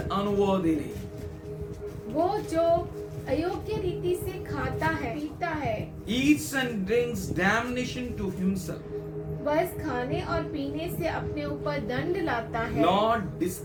unworthily वो जो अयोग्य रीति से खाता है, पीता है, eats and drinks damnation to himself, बस खाने और पीने से अपने ऊपर दंड लाता है, not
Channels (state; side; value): identical; both; correlation 1.00